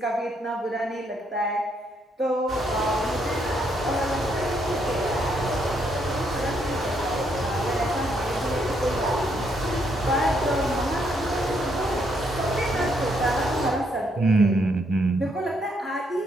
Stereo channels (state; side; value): normal; both; correlation 0.74